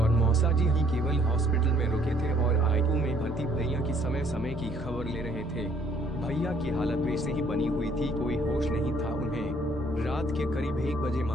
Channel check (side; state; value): both; normal; correlation 0.63